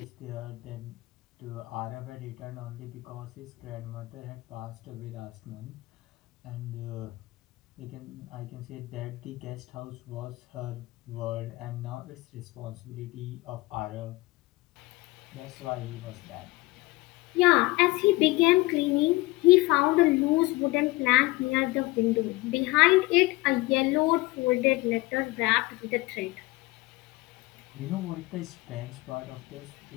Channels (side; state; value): right; quieter; 21.3 dB